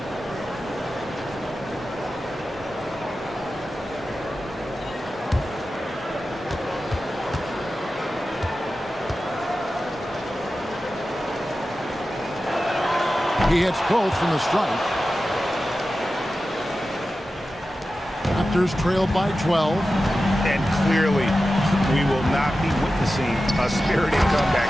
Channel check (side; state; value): both; normal; correlation 0.93